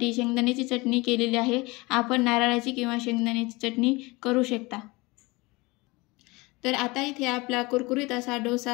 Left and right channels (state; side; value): quieter; right; 23.7 dB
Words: शेंगदाण्याची चटणी केलेली आहे। आपण नारळाची किंवा शेंगदाण्याची चटणी करू शकता। तर आता इथे आपला कुरकुरीत असा